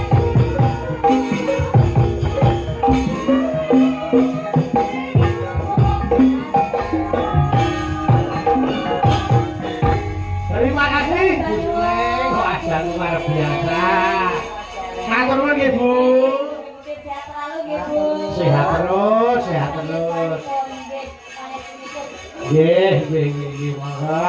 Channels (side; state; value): both; identical; correlation 1.00